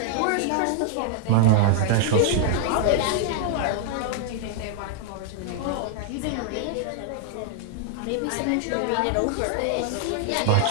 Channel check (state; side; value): different; both; correlation 0.00